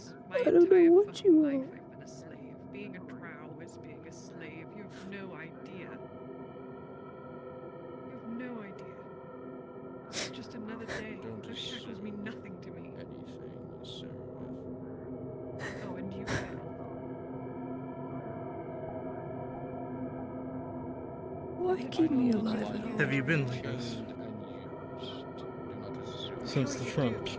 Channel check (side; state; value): both; identical; correlation 1.00